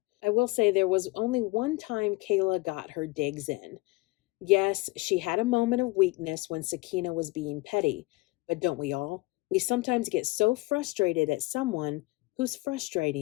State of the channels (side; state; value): right; quieter; 22.1 dB